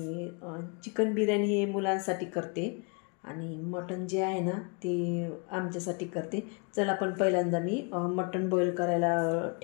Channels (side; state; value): right; quieter; 34.4 dB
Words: चिकन बिर्याणी हे मुलांसाठी करते आणि मटण जे आहे ना ते आमच्यासाठी करते. चला पण पहिल्यांदा मी मटण बॉईल करायला